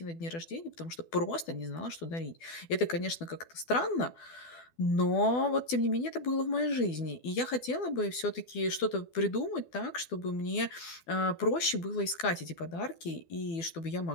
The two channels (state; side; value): late; right; 12 ms